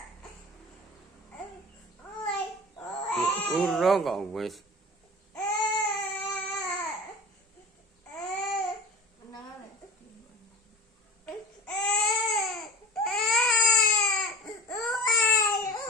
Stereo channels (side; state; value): both; normal; correlation 0.34